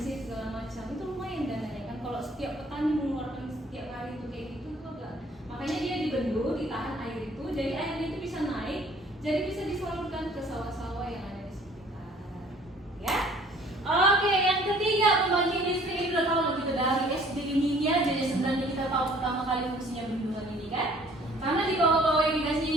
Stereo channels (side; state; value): both; normal; correlation 0.55